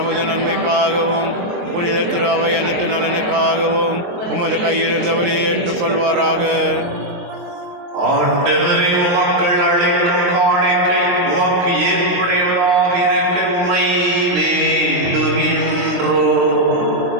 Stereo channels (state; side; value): late; left; 23 ms